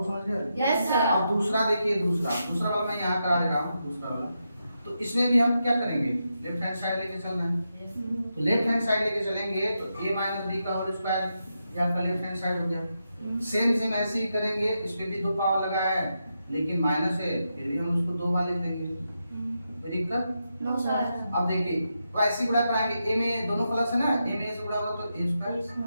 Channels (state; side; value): inverted; both; correlation -0.85